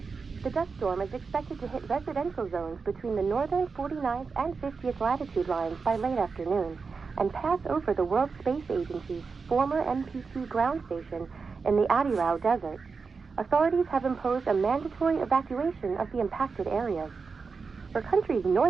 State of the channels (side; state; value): left; quieter; 4.9 dB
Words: The dust storm is expected to hit residential zones between the northern 49th and 50th latitude lines by late afternoon and pass over the World Space Agency's former MPT ground station in the Adirau Desert. Authorities have imposed a mandatory evacuation of the impacted areas. For countries